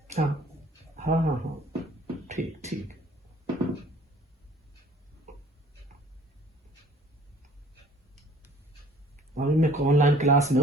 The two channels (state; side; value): normal; both; correlation 0.53